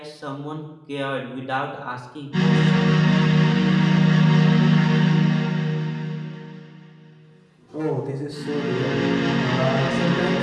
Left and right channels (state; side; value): identical; both; correlation 1.00